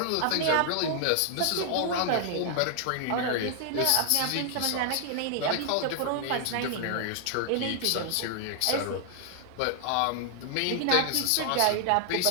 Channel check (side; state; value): both; different; correlation 0.00